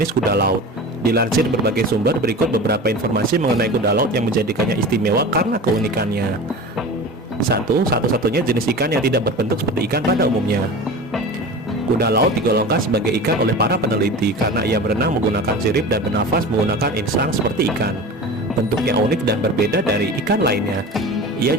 kuda laut. Dilansir berbagai sumber, berikut beberapa informasi mengenai kuda laut yang menjadikannya istimewa karena keunikannya. 1. Satu-satunya jenis ikan yang tidak berbentuk seperti ikan pada umumnya. Kuda laut digolongkan sebagai ikan oleh para peneliti karena ia berenang menggunakan sirip dan bernafas menggunakan insang seperti ikan. Bentuknya unik dan berbeda dari ikan lainnya. Ia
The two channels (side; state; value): both; normal; correlation 0.33